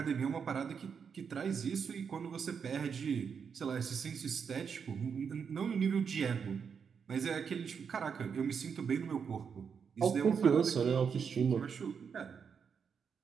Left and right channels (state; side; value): quieter; left; 6.6 dB